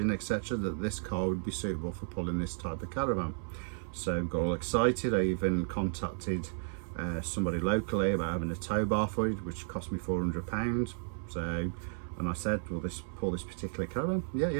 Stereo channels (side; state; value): left; silent; 56 dB below the other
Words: etc, that this car would be suitable for pulling this type of caravan. So got all excited. I even contacted somebody locally about having a tow bar for it, which cost me £400. So, and I said, will this pull this particular caravan?